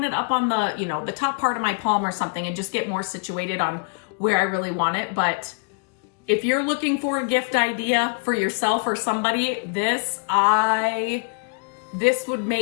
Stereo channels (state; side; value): quieter; right; 37.5 dB